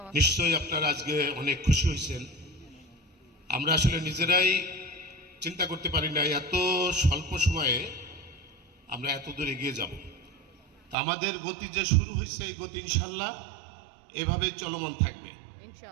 নিশ্চয়ই আপনারা আজকে অনেক খুশি হয়েছেন। আমরা আসলে নিজেরাই চিন্তা করতে পারি না এত স্বল্প সময়ে আমরা এত দূর এগিয়ে যাব। আমাদের গতি যে শুরু হয়েছে, এই গতি ইনশাল্লাহ এভাবে চলমান থাকবে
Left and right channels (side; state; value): left; drops out; at 11.0 s